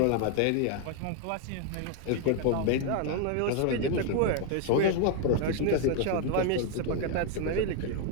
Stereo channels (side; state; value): both; different; correlation 0.01